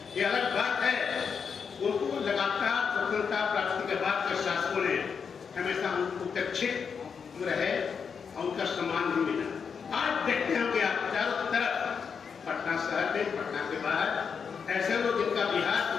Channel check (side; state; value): right; quieter; 6.3 dB